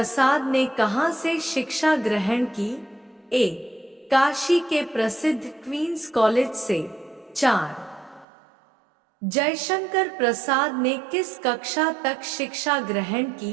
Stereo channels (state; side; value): drops out; left; at 8.2 s